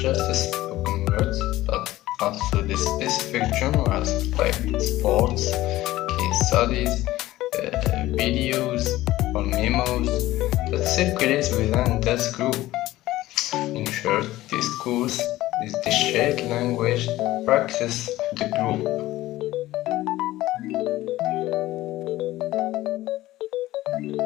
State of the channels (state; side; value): quieter; right; 16.4 dB